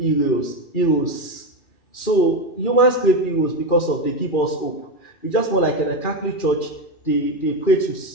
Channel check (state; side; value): late; right; 2.4 ms